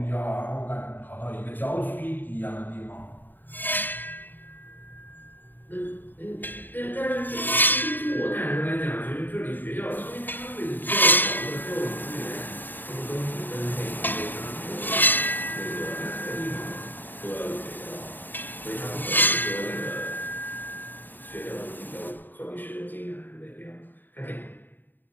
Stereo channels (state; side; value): late; right; 0.090 ms